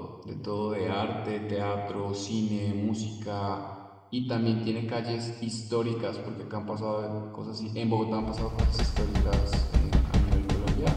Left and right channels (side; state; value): both; identical; correlation 1.00